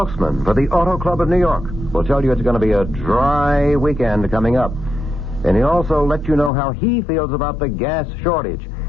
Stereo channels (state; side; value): drops out; right; at 6.5 s